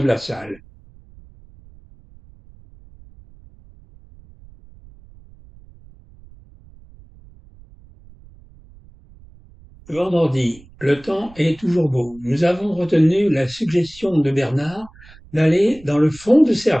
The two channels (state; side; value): noise; right; rumble, 24 dB below the sound